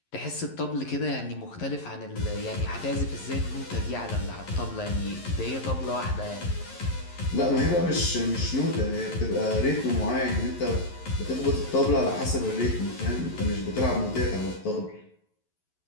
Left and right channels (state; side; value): late; right; 11 ms